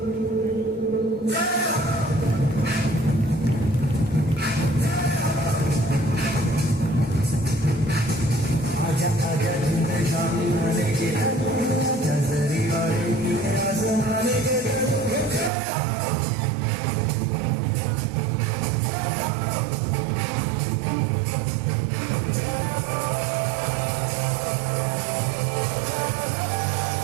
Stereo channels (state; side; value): drops out; left; at 15.5 s